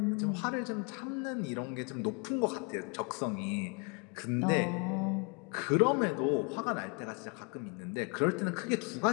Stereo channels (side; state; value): right; quieter; 34.7 dB